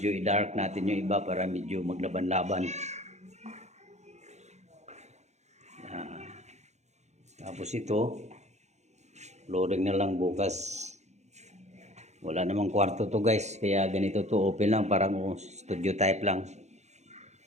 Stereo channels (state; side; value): late; left; 0.33 ms